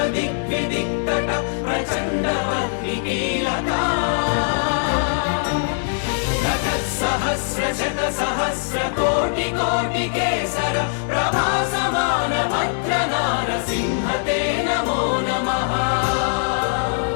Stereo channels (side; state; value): right; silent; digital silence